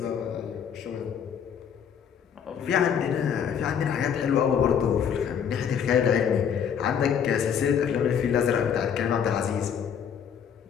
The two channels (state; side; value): quieter; right; 7.9 dB